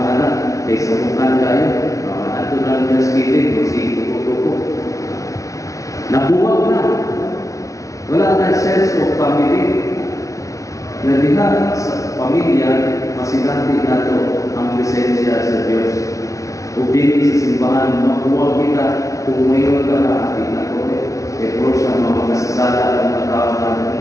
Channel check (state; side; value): late; right; 0.16 ms